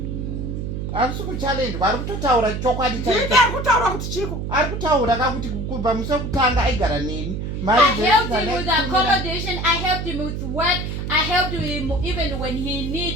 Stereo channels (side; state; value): right; noise; hum, 4 dB below the sound